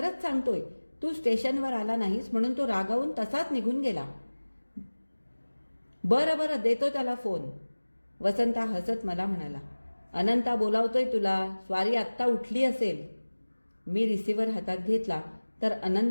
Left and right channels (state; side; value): inverted; both; correlation -1.00